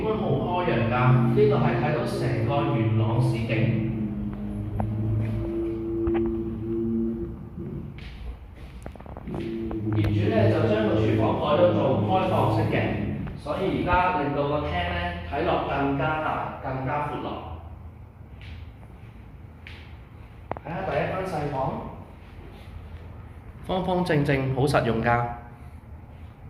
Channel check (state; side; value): identical; both; correlation 1.00